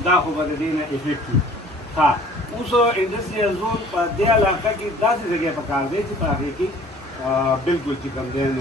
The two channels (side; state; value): both; normal; correlation 0.51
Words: دا خو به د دې نه افیکټ وي ها اوس انډسټریل زون په دې علاقه کې داسې ځای پکار دی چې په هغې کې بالکل چې کوم دی